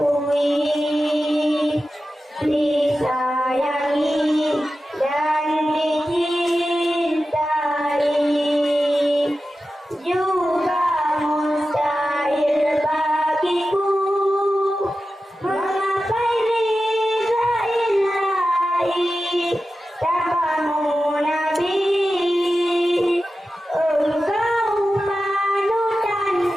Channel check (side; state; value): both; normal; correlation 0.93